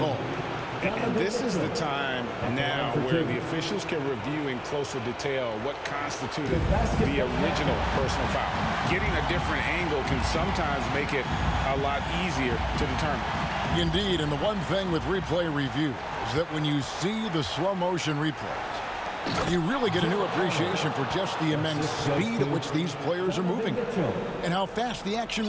And this is the time now where the officials can review in closer detail what constituted the original personal foul. Getting a different angle can sometimes make it a lot easier to determine. Indeed, and the one thing with replay review is that when you see the slow motion replays, you really get a new appreciation for just the immense speed at which these players are moving and how fast the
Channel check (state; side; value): identical; both; correlation 1.00